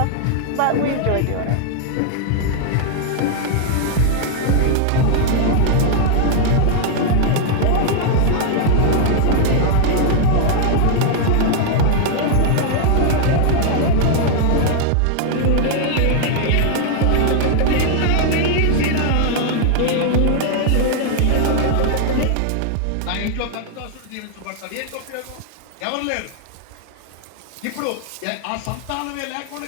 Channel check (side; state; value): both; different; correlation 0.00